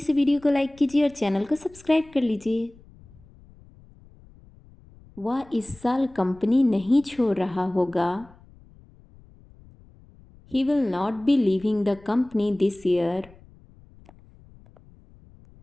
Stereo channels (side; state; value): left; noise; rumble, 25 dB below the sound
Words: video को लाइक कीजिए और चैनल को सब्सक्राइब कर लीजिए। वह इस साल कंपनी नहीं छोड़ रहा होगा। He will not be leaving the company this year.